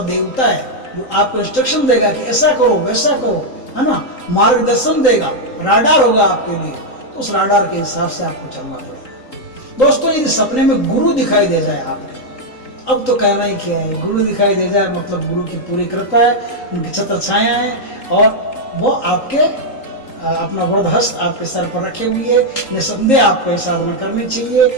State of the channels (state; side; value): late; right; 3.8 ms